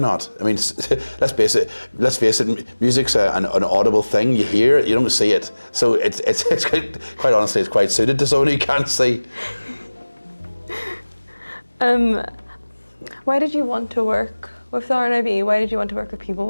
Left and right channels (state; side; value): inverted; both; correlation -1.00